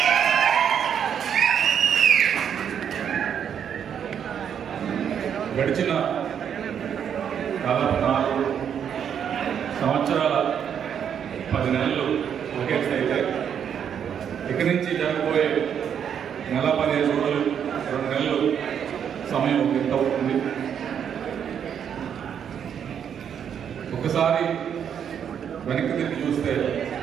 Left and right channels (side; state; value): left; quieter; 8.3 dB